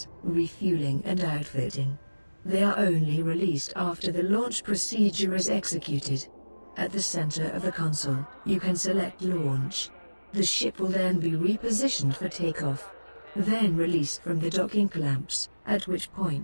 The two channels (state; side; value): inverted; both; correlation -1.00